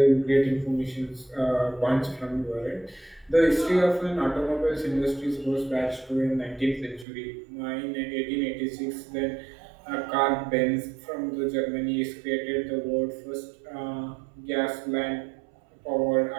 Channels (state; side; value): drops out; left; at 7.1 s